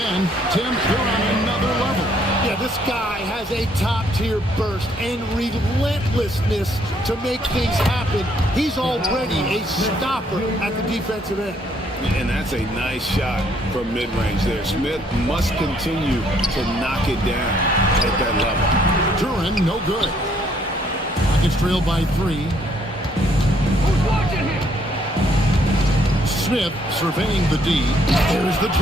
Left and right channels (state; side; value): normal; both; correlation 0.67